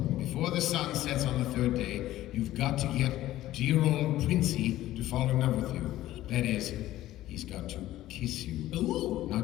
Before the sun sets on the 3rd day, you've got to get dear old Princey to fall in love with you. That is, he's got to kiss you. Ooh.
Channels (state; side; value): quieter; right; 14.7 dB